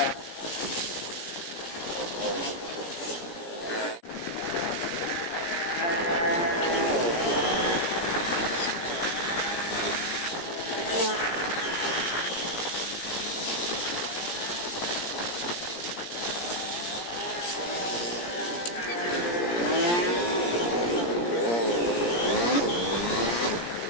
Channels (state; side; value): late; right; 17 ms